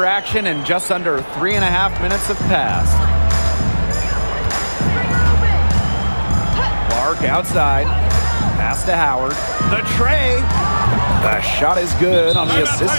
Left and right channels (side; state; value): both; inverted; correlation -1.00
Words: action and just under 3.5 minutes have passed. Clark outside. Pass to Howard. The tray. The shot is good on the